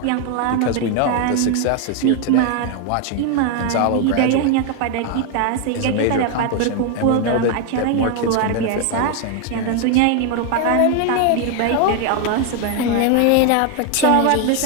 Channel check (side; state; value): both; different; correlation 0.01